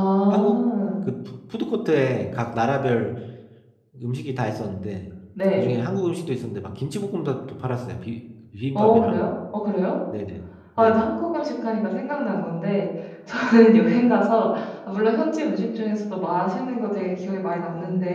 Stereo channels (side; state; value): both; identical; correlation 1.00